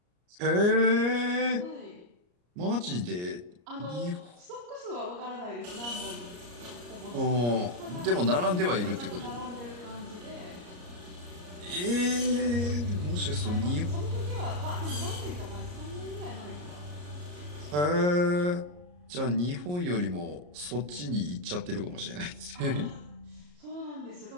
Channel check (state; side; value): late; left; 34 ms